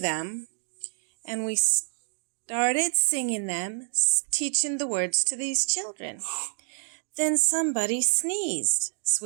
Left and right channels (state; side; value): silent; left; 58 dB below the other